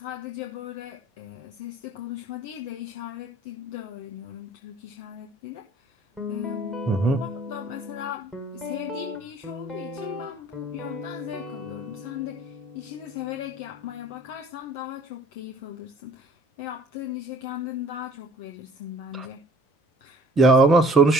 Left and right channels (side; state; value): both; normal; correlation 0.53